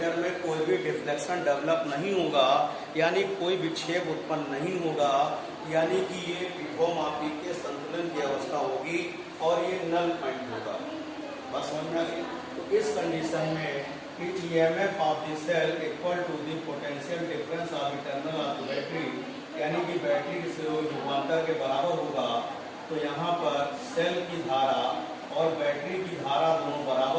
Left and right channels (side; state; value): both; identical; correlation 1.00